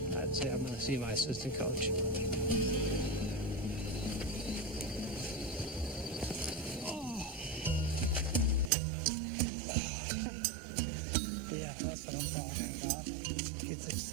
I'd say I'm going to see my assistant coach. Yeah, that's what I'm talking about. Get this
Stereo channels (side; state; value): left; drops out; at 8.7 s